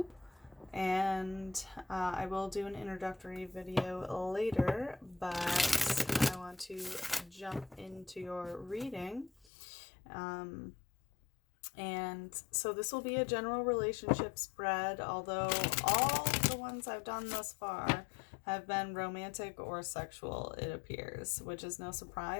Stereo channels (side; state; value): right; drops out; at 9.5 s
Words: and I will do an introductory video later, but I want to jump into your reading. And so this will be a general relationship spread, although all the ones I've done thus far have been romantic or sexual, it appears, which is no